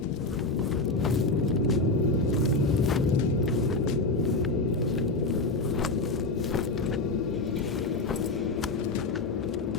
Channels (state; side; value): quieter; right; 3.2 dB